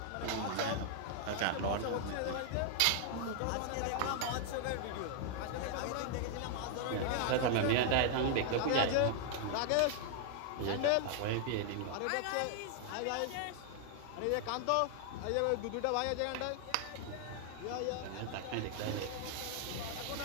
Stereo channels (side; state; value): both; different; correlation 0.00